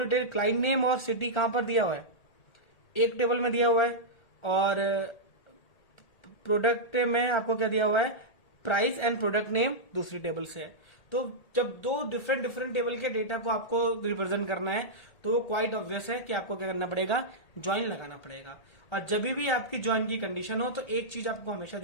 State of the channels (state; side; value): late; right; 1.8 ms